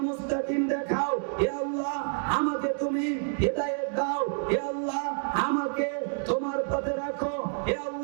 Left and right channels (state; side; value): silent; left; 59 dB below the other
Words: মুস্তাকিম দেখাও, হে আল্লাহ আমাকে তুমি হিদায়াত দাও, হে আল্লাহ আমাকে তোমার পথে রাখো, হে